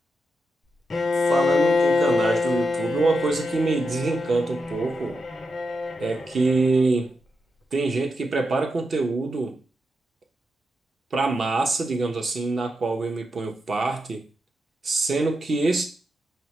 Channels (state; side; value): normal; both; correlation 0.86